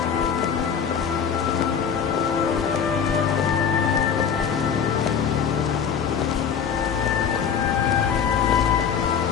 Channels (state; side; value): quieter; right; 7.3 dB